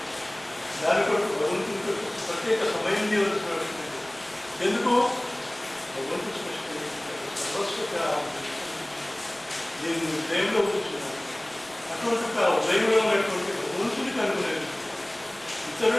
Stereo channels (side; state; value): right; noise; rumble, 29 dB below the sound